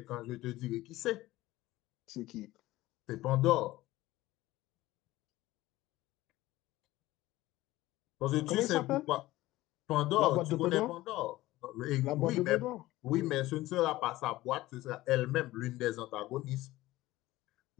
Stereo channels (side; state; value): right; quieter; 17.3 dB